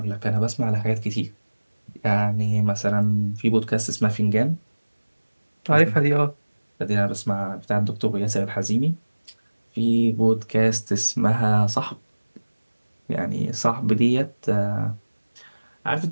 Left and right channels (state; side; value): inverted; both; correlation -1.00